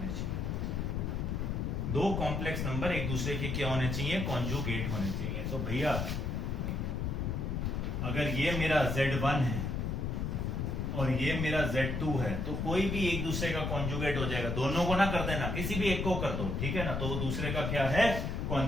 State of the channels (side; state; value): left; noise; rumble, 1 dB below the sound